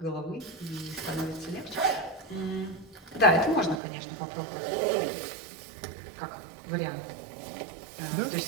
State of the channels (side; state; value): left; drops out; at 3.8 s